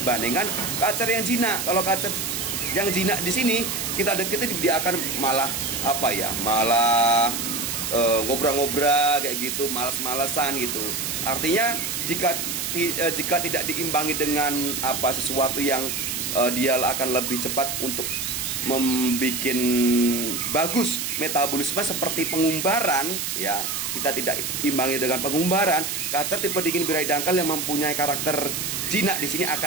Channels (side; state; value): right; noise; hiss, 3 dB below the sound